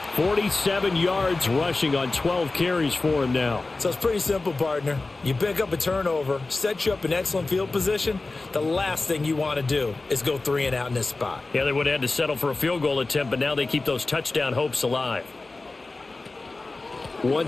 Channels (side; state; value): right; quieter; 3.4 dB